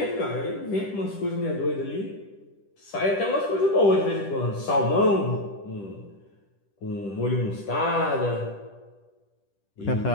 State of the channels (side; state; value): right; late; 10 ms